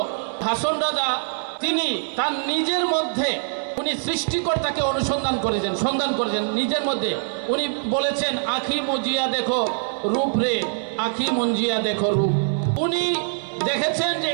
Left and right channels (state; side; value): silent; left; digital silence